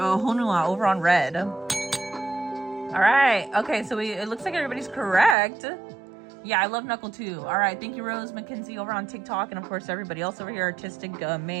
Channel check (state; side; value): drops out; left; at 5.4 s